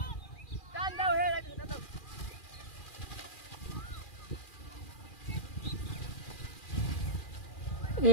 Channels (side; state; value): right; late; 2.4 ms